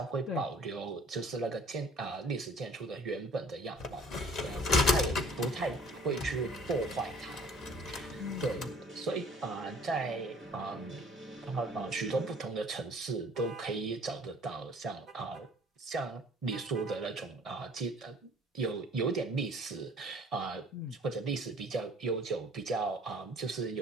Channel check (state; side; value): normal; both; correlation 0.53